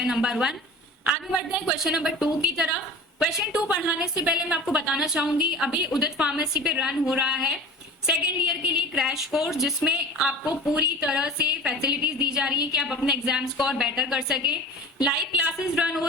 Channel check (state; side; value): normal; both; correlation 0.37